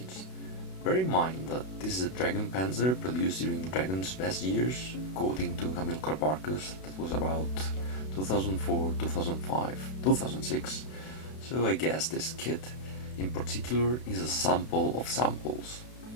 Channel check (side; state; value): right; late; 32 ms